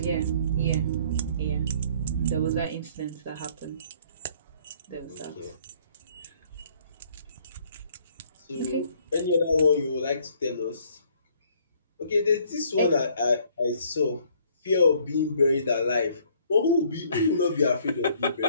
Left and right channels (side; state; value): both; inverted; correlation -0.61